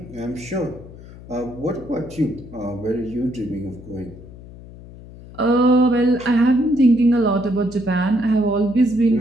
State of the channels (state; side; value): noise; left; hum, 17 dB below the sound